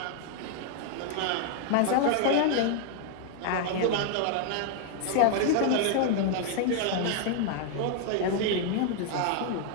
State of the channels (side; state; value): both; different; correlation 0.00